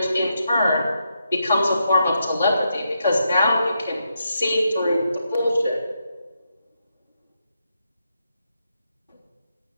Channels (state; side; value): inverted; both; correlation -0.82